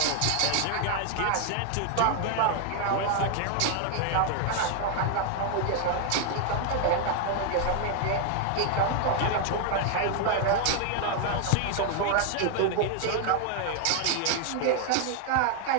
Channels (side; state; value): both; different; correlation 0.00